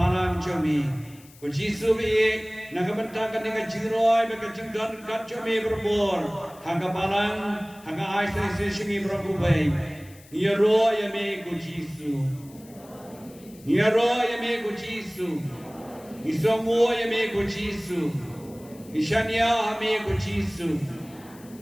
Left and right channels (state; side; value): noise; left; hiss, 24 dB below the sound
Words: jumi Ku Jisu be Nagabantakan dengan jingroi, mereka jingdan kacau me berbor. Hanga balang, hanga aisai sesingi berakubai. Nia roh ya me ku Jisu. Nia roh ya me ku Jisu. Isongo ya me ku Jisu. Ishanya me ku Jisu.